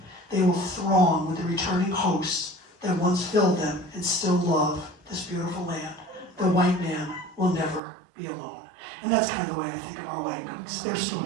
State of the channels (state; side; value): drops out; left; at 7.8 s